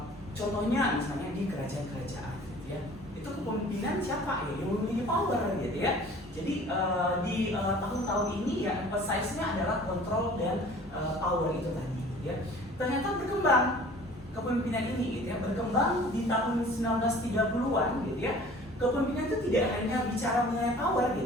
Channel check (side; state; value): both; normal; correlation 0.48